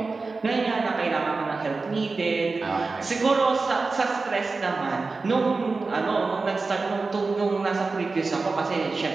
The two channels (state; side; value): quieter; left; 3.9 dB